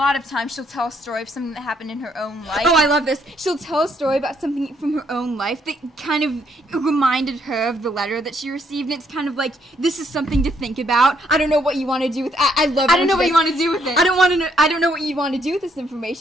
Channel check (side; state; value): both; normal; correlation 0.71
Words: of times she'll tell a story of something that happened in her own life. Oh, I love this. She'll tell a story about something from her own life that kind of reminded her of the letter that she received. And it's kind of like, this is something to think about. I don't know what you want to do with. I love. I don't know what you want to do with it. I don't know what you want to do with this